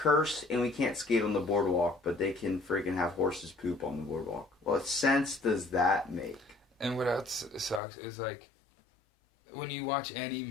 and we can't skate on the boardwalk, but they can freaking have horses poop on the boardwalk. What sense does that make? And what else sucks is, like, when you watch any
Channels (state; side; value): drops out; right; at 7.8 s